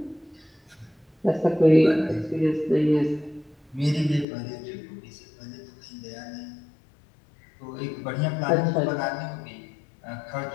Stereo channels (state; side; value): drops out; right; at 4.2 s